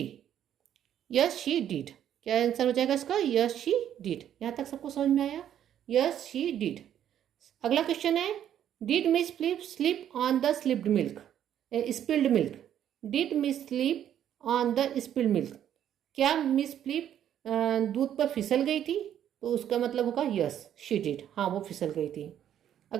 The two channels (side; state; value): left; quieter; 10.3 dB